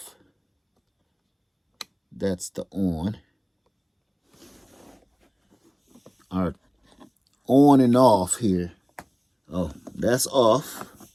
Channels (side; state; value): both; identical; correlation 1.00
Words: That's the on. Our on and off here. Oh, that's off.